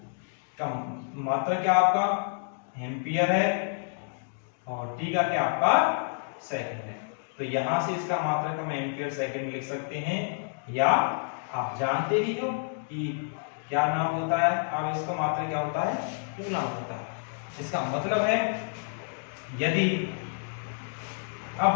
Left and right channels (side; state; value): right; silent; digital silence